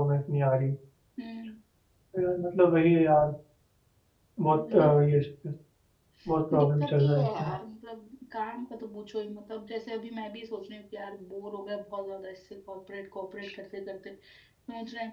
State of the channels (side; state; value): both; identical; correlation 1.00